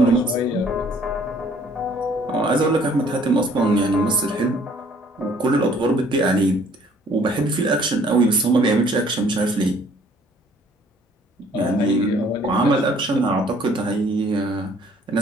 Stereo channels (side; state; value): both; normal; correlation 0.58